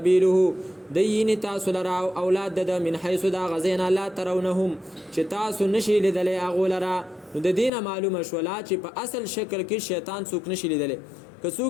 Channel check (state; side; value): drops out; right; at 7.7 s